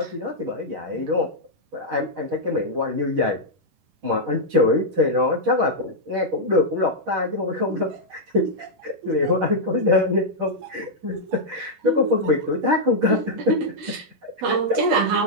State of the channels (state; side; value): late; left; 10 ms